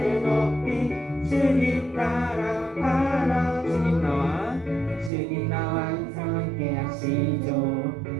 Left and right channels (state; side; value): drops out; left; at 5.1 s